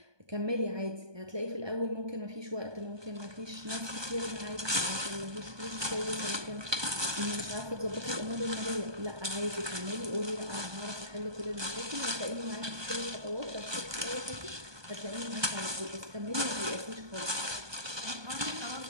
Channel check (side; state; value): left; late; 1.2 ms